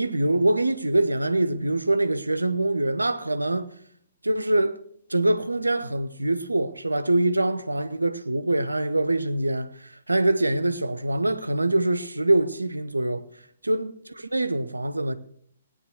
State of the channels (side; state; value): both; inverted; correlation -0.94